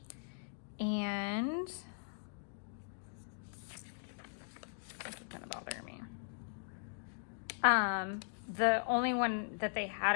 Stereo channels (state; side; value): silent; right; digital silence